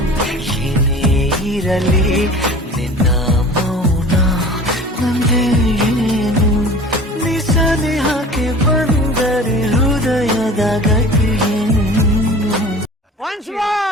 ಏನೇ ಇರಲಿ, ನಿನ್ನ ಮೌನ ನಂದೇ ಏನು, ನಿಸನಿಹಕ್ಕೆ ಬಂದರೆ ಹೃದಯದ ಗತಿಯೇನು. Once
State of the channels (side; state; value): both; normal; correlation 0.42